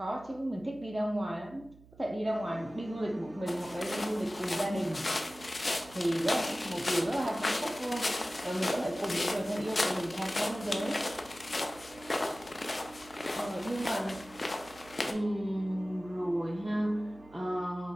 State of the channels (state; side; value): noise; right; hum, 23 dB below the sound